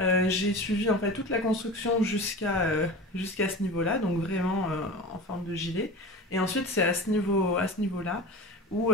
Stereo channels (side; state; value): both; normal; correlation 0.32